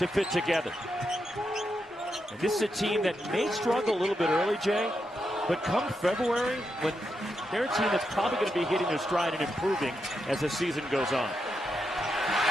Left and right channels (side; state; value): both; normal; correlation 0.84